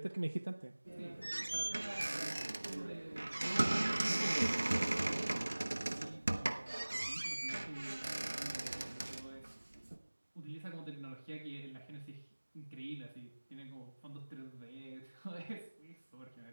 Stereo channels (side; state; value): both; inverted; correlation -1.00